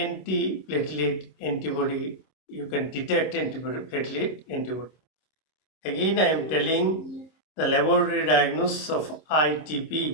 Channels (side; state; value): right; late; 26 ms